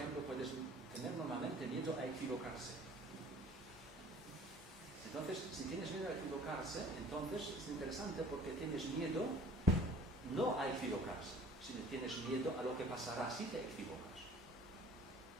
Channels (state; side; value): normal; both; correlation 0.49